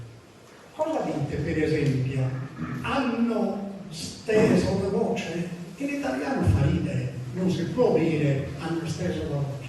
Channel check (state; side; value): identical; both; correlation 1.00